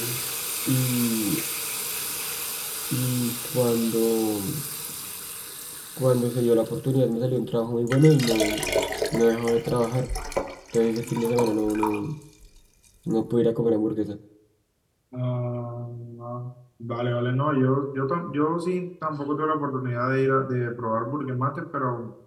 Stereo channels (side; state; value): both; identical; correlation 1.00